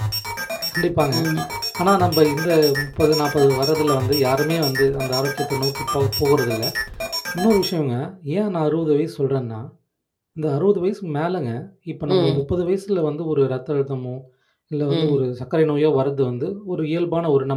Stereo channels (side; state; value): both; identical; correlation 1.00